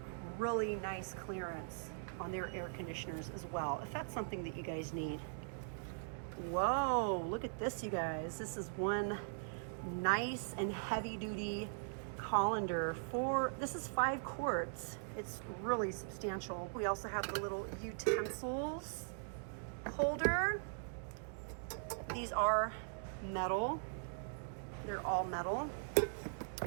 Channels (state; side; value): silent; left; digital silence